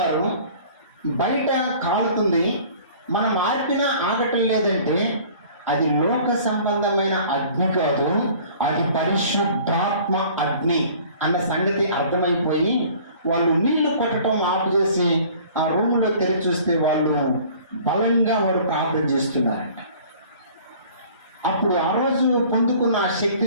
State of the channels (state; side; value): inverted; both; correlation -0.50